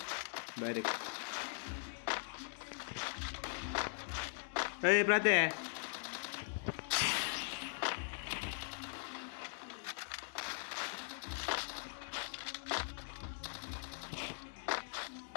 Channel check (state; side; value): silent; right; digital silence